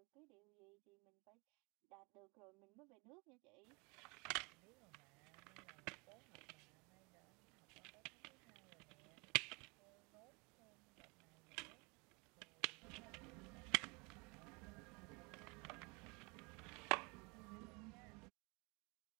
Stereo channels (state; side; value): quieter; left; 29.2 dB